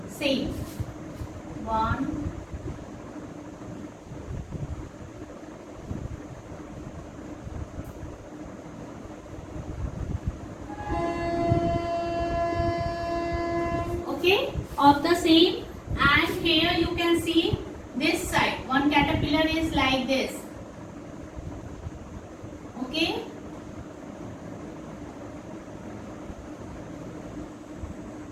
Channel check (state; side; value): identical; both; correlation 1.00